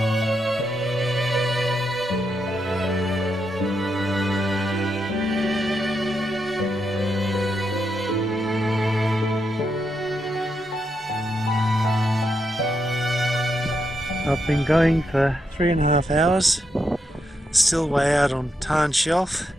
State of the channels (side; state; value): both; normal; correlation 0.82